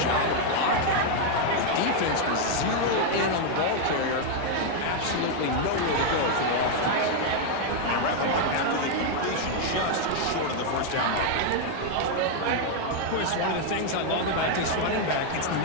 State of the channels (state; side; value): different; both; correlation 0.00